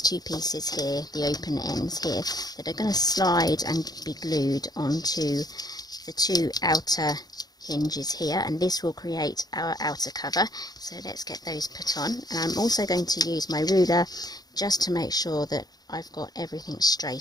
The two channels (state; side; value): late; right; 0.19 ms